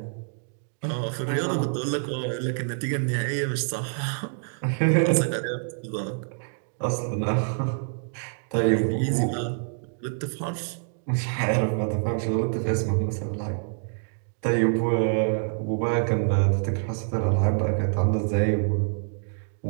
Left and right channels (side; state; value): left; silent; 61 dB below the other